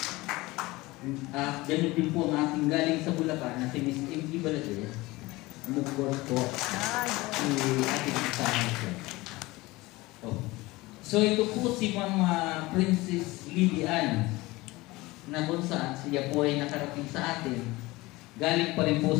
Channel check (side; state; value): right; quieter; 20.8 dB